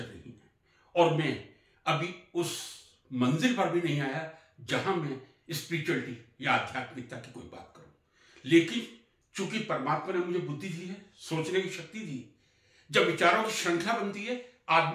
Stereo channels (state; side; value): identical; both; correlation 1.00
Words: नहीं है और मैं अभी उस मंजिल पर भी नहीं आया जहां मैं स्पिरिचुअलिटी या आध्यात्मिकता की कोई बात करूं। लेकिन चूंकि परमात्मा ने मुझे बुद्धि दी है, सोचने की शक्ति दी, जब विचारों की श्रृंखला बनती है,